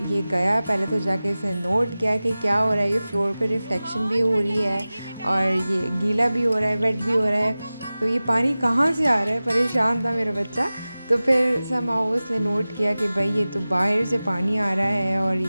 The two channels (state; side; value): inverted; both; correlation -0.97